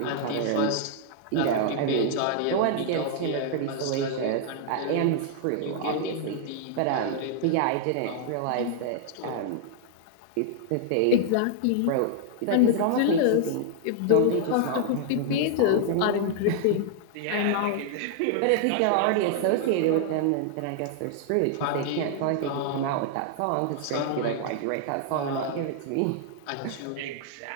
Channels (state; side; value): different; both; correlation -0.01